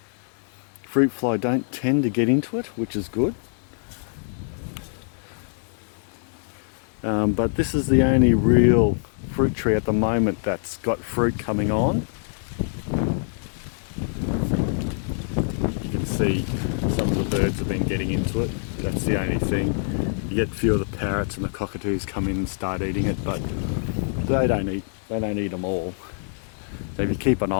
Fruit fly don't tend to get into it, which is good. But this is the only real fruit tree at the moment that's got fruit coming on. You can see some of the birds have been getting into it. That's the only thing. You get a few of the parrots and the cockatoos come in and start eating it, but they don't eat them all. So if you keep an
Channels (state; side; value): silent; right; digital silence